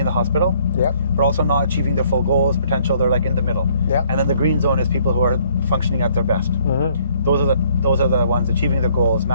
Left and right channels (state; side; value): inverted; both; correlation -0.63